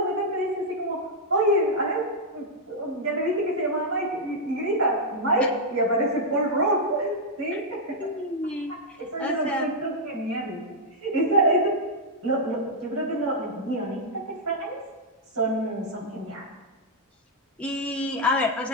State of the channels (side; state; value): both; normal; correlation -0.04